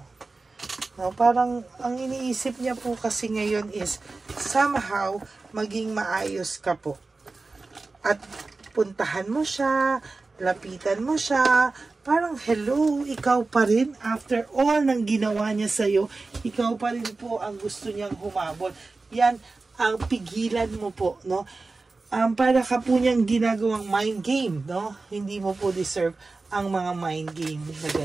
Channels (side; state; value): left; quieter; 3.7 dB